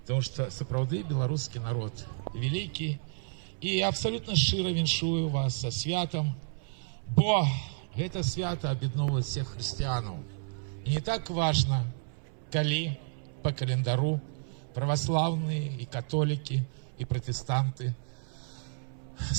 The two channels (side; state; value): left; silent; 57 dB below the other